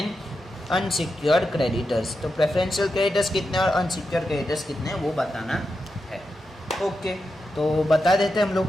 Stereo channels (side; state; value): both; normal; correlation 0.88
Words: unsecured creditors. तो प्रेफरेंशियल क्रेडिटर्स कितने और अनसिक्योर्ड क्रेडिटर्स कितने वो बताना है। ओके, तो बता देते हैं हम लोग।